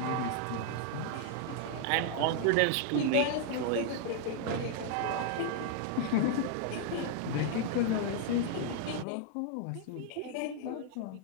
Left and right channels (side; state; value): both; different; correlation 0.00